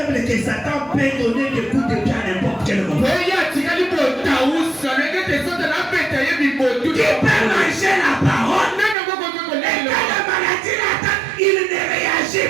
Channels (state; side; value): drops out; left; at 9.0 s